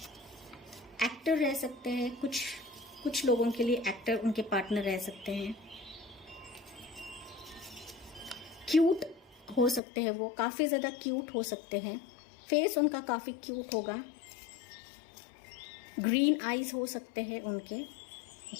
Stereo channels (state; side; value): drops out; right; at 9.8 s